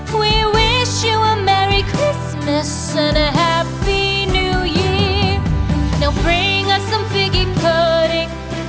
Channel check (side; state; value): both; identical; correlation 1.00